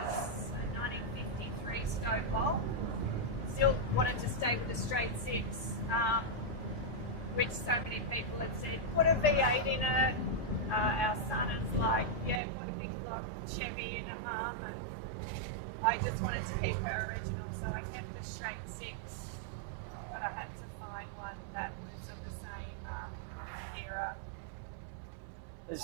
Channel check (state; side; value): drops out; left; at 12.4 s